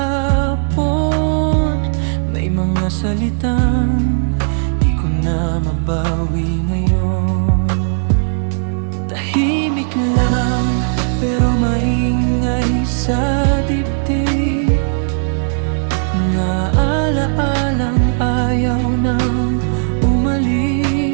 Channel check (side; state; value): left; silent; digital silence